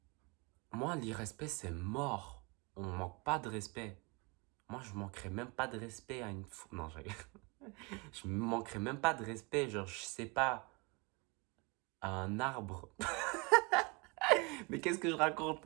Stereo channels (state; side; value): quieter; left; 28.5 dB